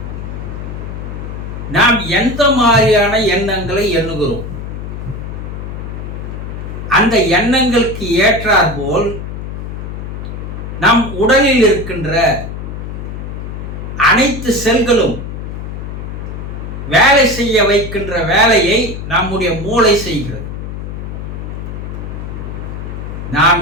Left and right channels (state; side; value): noise; left; hum, 7 dB below the sound